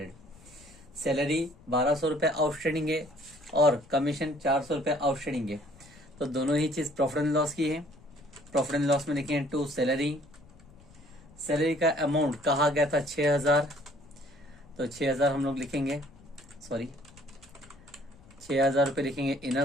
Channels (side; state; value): left; noise; rumble, 24 dB below the sound